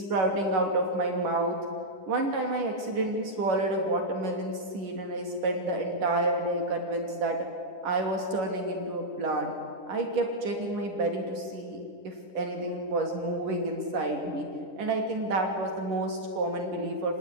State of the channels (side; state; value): left; late; 11 ms